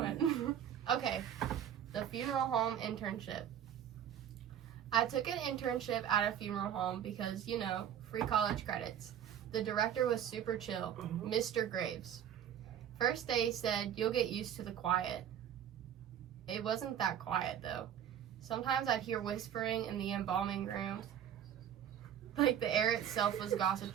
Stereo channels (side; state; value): left; quieter; 9.7 dB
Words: you doing? Okay, the funeral home internship. I took an internship at a funeral home because, you know, free college credits. The director was super chill, Mr. Graves. First day said, you'll get used to the quiet. It wasn't that quiet, though. Sometimes I'd hear whispering in the embalming rooms. Like the air itself was